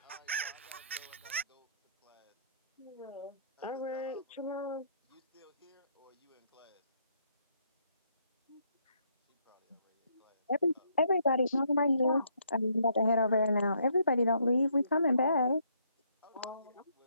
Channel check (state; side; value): inverted; both; correlation -0.70